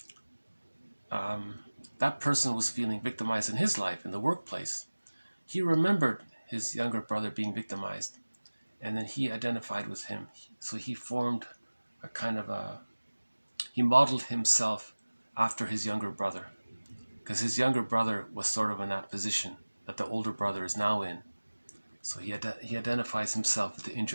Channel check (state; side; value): inverted; both; correlation -1.00